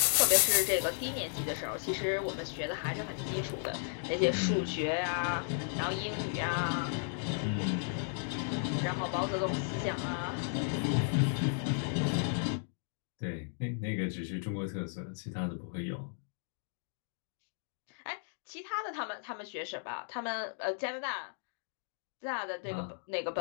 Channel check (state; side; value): silent; right; digital silence